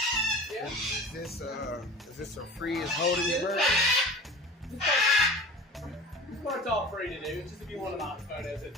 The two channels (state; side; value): normal; both; correlation 0.37